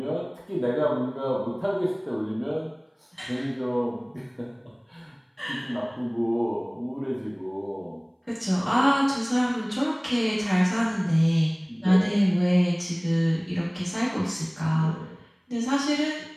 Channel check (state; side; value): identical; both; correlation 1.00